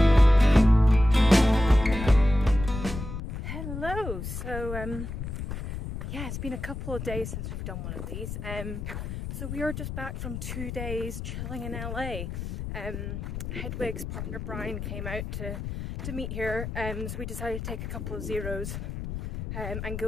Hello, so yeah, it's been a couple of days since we've done one of these. So we are just back from 2 days chilling in LA. Hedwig's partner Brian came out to meet here, so we decided to take a couple of zeros and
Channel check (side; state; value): left; noise; rumble, 6 dB below the sound